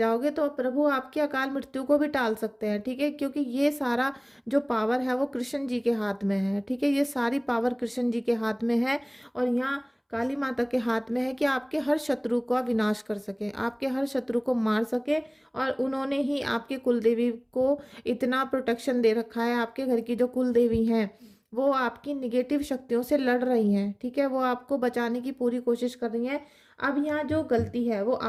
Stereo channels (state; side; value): identical; both; correlation 1.00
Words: तो प्रभु आपकी अकाल मृत्यु को भी टाल सकते हैं। ठीक है, क्योंकि ये सारा जो पावर है वो कृष्ण जी के हाथ में है। ठीक है, ये सारी पावर कृष्ण जी के हाथ में है। और यहाँ काली माता के हाथ में है कि आपके हर शत्रु का विनाश कर सके, आपके हर शत्रु को मार सके। और उन्होंने ही आपके कुलदेवी को इतना प्रोटेक्शन दे रखा है। आपके घर की जो कुलदेवी हैं, वो आपकी निगेटिव शक्तियों से लड़ रही हैं। ठीक है, वो आपको बचाने की पूरी कोशिश कर रही हैं। अब यहाँ जो गलती है वो